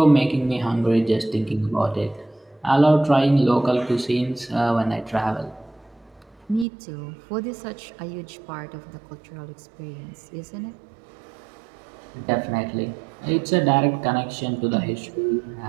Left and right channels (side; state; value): left; drops out; at 6.7 s